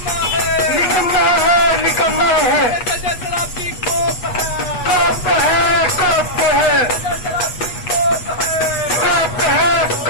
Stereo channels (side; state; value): right; late; 8.3 ms